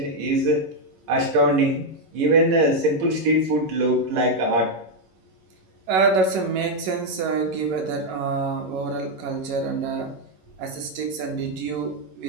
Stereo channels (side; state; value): left; late; 11 ms